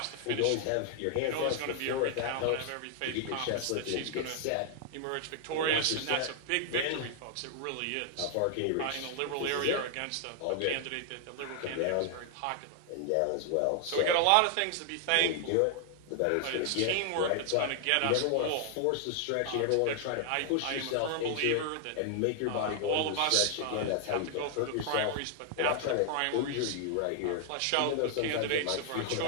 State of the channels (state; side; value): different; both; correlation 0.00